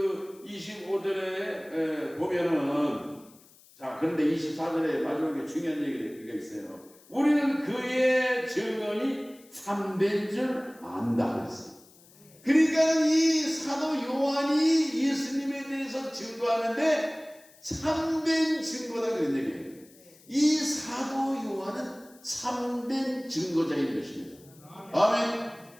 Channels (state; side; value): noise; left; hiss, 26 dB below the sound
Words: 25절에 보면은, 자, 그런데 24절에 마지막에 중요한 얘기가 있어요. 우리는 그의 증언이 참된 줄 안다 그랬어요. 그러니까 이 사도 요한이 예수님에 대해서 증거하는데 참된 증거다 그런 얘기예요. 이 사도 요한은 참된 증거자인 것입니다. 아멘.